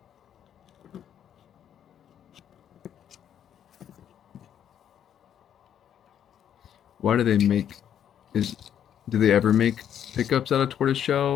Why do they make? Do they ever make pickups out of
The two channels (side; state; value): right; quieter; 9.6 dB